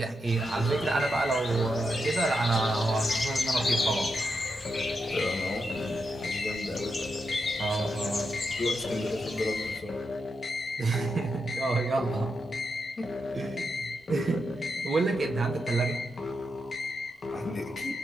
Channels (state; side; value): normal; both; correlation 0.85